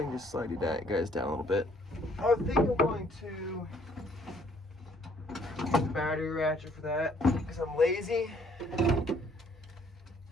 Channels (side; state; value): both; normal; correlation 0.63